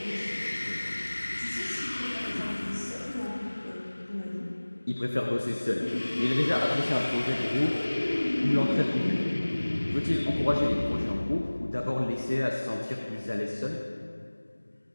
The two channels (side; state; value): both; inverted; correlation -1.00